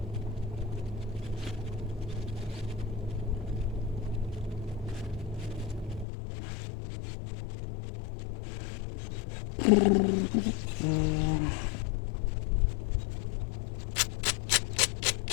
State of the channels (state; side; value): drops out; right; at 6.1 s